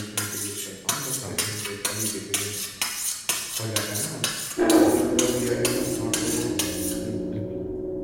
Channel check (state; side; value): identical; both; correlation 1.00